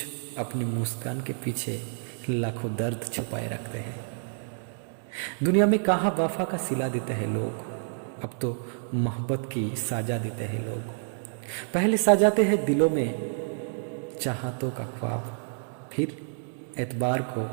अपनी मुस्कान के पीछे लाखों दर्द छुपाए रखते हैं। दुनिया में कहाँ वफा का सिला देते हैं लोग, अब तो मोहब्बत की साजा देते हैं लोग। पहले सजाते हैं दिलों में चाहतों का ख्वाब, फिर एतबार को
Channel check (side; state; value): left; silent; digital silence